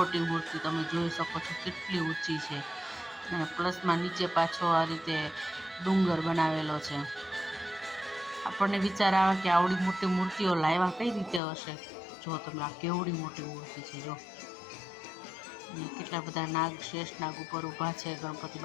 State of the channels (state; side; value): drops out; right; at 11.4 s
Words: મૂર્તિ તમે જોઈ શકો છો, કેટલી ઊંચી છે. અને પ્લસમાં નીચે પાછો આ રીતે ડુંગર બનાવેલો છે. આપણને વિચાર આવે કે આવડી મોટી મૂર્તિઓ લાવ્યા કઈ રીતે હશે. જો તમે, આ કેવડી મોટી મૂર્તિ છે. જો કેટલા બધા શેષનાગ ઉપર ઊભા છે ગણપતિ